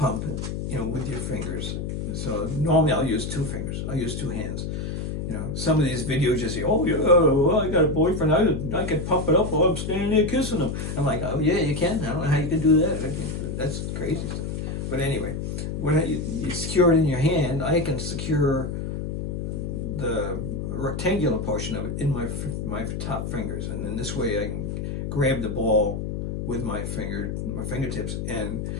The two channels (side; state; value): left; noise; hum, 4 dB below the sound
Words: you know, with your fingers. So normally I'll use 2 fingers. I'll use 2 hands. You know, some of these videos you say, oh yeah, well, I got a boyfriend, I can pump it up while I'm standing there kissing him. I'm like, oh yeah, you can. I don't know how you can do that. That's crazy stuff. But anyway, when you secure it in your hand, I can secure the rectangular portion of it in my top fingers, and then this way I can grab the ball with my fingertips, and